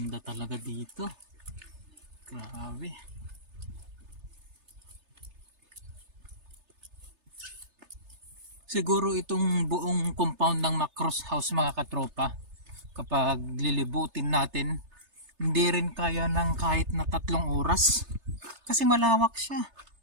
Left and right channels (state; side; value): late; left; 3.3 ms